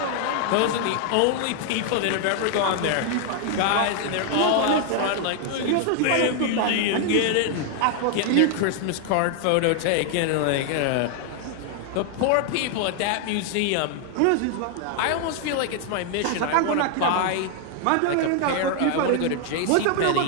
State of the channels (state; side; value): different; both; correlation 0.00